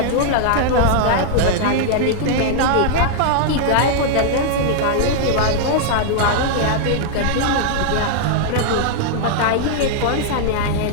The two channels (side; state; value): both; different; correlation -0.01